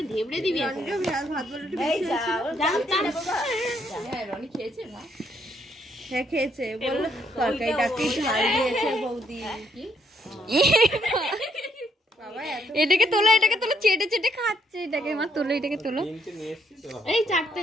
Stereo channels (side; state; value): both; normal; correlation 0.72